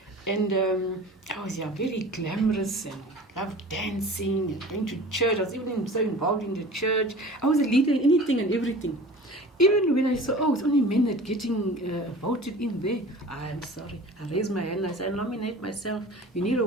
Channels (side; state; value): both; normal; correlation 0.41